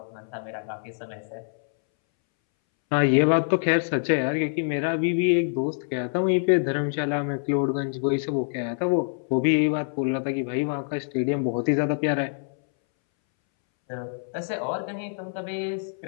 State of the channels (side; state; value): right; silent; 61 dB below the other